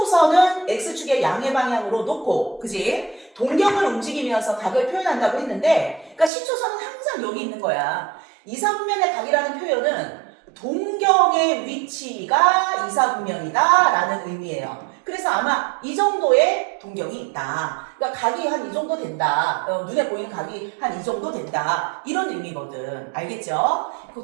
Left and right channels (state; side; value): drops out; left; at 6.3 s